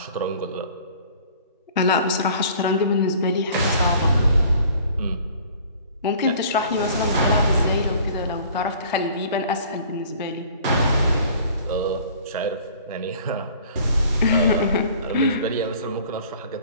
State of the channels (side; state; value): both; inverted; correlation -0.50